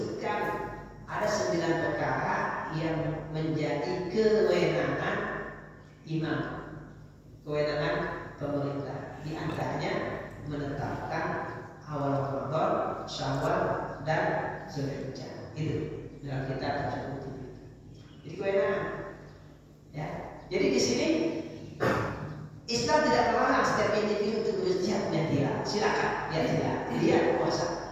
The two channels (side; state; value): both; identical; correlation 1.00